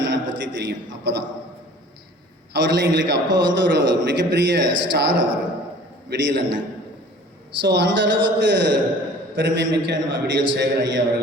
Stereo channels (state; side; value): normal; both; correlation 0.48